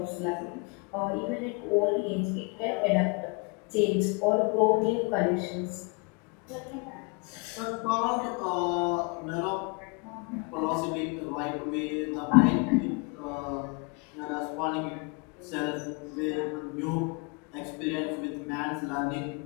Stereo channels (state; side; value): quieter; right; 31.5 dB